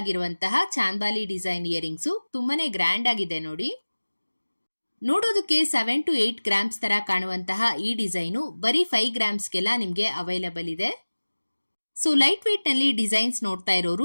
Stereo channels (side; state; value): both; inverted; correlation -1.00